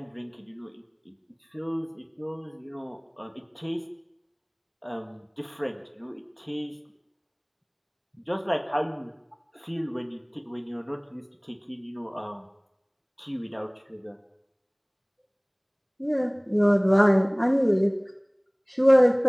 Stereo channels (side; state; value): both; identical; correlation 1.00